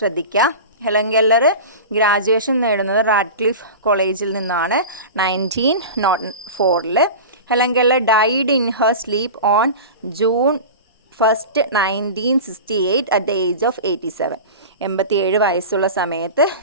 ഹെലൻ കെല്ലർ ഗ്രാജുവേഷൻ നേടുന്നത് റാഡ്ക്ലിഫ് കോളേജിൽ നിന്നാണ് 1904. Helen Keller died in her sleep on June 1, 1968 at the age of 87. 87 വയസ്സുള്ള സമയത്ത്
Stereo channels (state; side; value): inverted; both; correlation -0.31